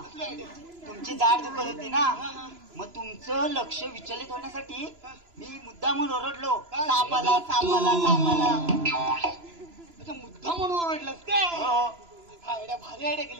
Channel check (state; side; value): late; left; 2.9 ms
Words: कसली आयडिया? तुमची दाढ दुखत होती ना, मग तुमचं लक्ष विचलित होण्यासाठी मी मुद्दामून ओरडलो सापाला सापाला सापाला. अच्छा मुद्दा म्हणून ओरडलास काय? हो आयडिया भारी आयडिया